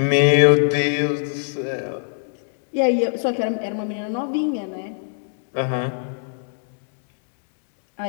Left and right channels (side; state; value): right; silent; digital silence